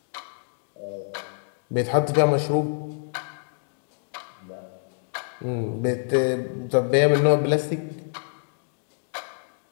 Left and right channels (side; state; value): right; silent; digital silence